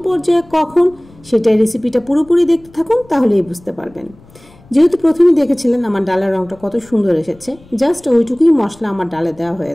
পর্যায়ে কখন সেটাই রেসিপিটা পুরোপুরি দেখতে থাকুন, তাহলেই বুঝতে পারবেন। যেহেতু প্রথমেই দেখেছিলেন আমার ডালের রংটা কত সুন্দর এসেছে, জাস্ট ওইটুকুই মশলা আমার ডালে দেওয়া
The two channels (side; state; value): left; noise; rumble, 26 dB below the sound